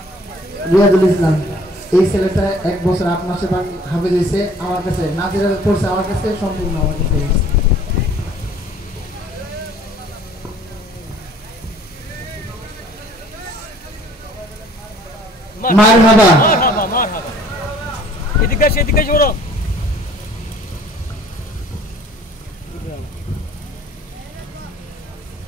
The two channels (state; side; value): normal; both; correlation 0.54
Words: রিয়াজুল ইসলাম এই ছেলেটা 1 বছর 8 মাসে হাফেজ হয়েছে আমার কাছে, নাজিরা পড়ছে আমার কাছে, সম্পূর্ণ আমার কাছে। মারহাবা মারহাবা মারহাবা। এদিকে জোরো।